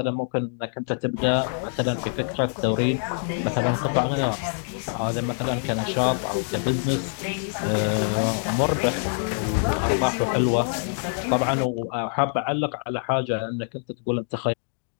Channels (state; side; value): silent; right; digital silence